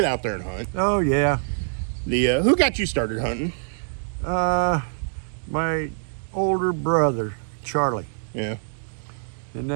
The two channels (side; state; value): left; silent; digital silence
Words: out there and hunt. Oh, yeah. Who got you started hunting? My older brother, Charlie. Yeah. And